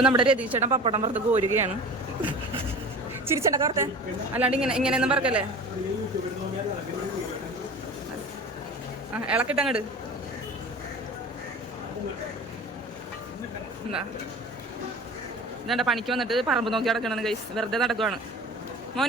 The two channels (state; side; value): normal; both; correlation 0.37